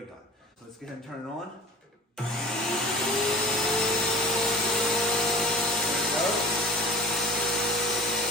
gun. So let's go ahead and turn it on. There it goes.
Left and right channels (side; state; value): both; normal; correlation 0.41